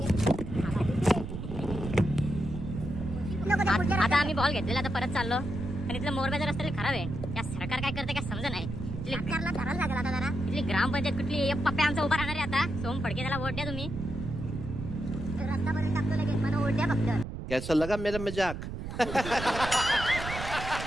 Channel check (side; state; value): right; noise; rumble, 7 dB below the sound